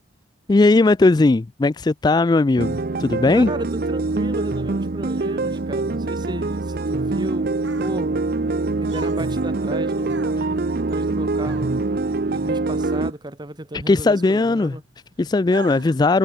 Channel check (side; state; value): both; normal; correlation 0.61